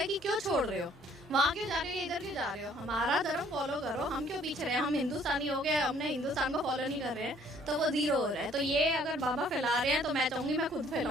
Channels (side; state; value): both; normal; correlation 0.60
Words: कि क्यों छोड़ रहे हो, वहाँ क्यों जा रहे हो, इधर क्यों जा रहे हो, हमारा धर्म फॉलो करो, हम क्यों पीछे रहे हैं, हम हिंदुस्तानी हो गए, हमने हिंदुस्तान को फॉलो नहीं कर रहे हैं तो वो जीरो हो रहा है। तो ये अगर बाबा फैला रहे हैं तो मैं चाहूंगी मैं खुद